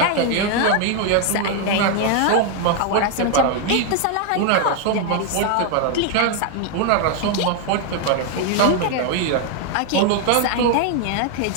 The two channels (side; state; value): both; different; correlation 0.00